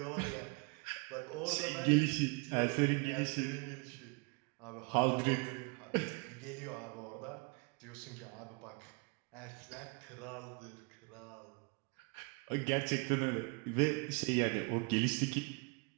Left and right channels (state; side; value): quieter; left; 30.8 dB